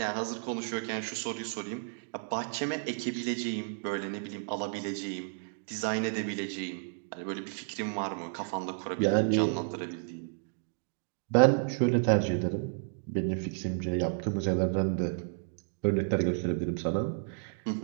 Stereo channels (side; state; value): left; silent; digital silence